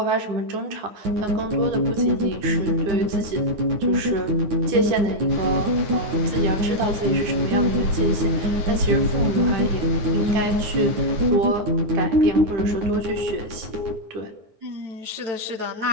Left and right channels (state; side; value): late; left; 9.5 ms